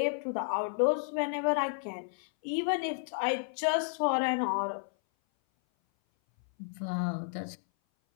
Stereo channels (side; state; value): right; silent; 57 dB below the other